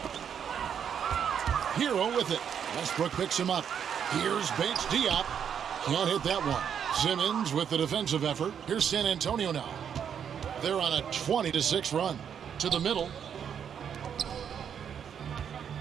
Hero with it. Westbrook picks him up. Here's Bates Diop. Can't hit that one. Simmons with the defensive effort. Here's San Antonio now. They're on a 20-6 run. To the middle.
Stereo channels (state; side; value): quieter; left; 8.1 dB